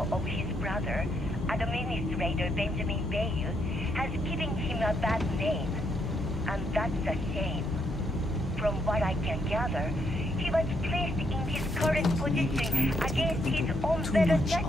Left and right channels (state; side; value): normal; both; correlation 0.75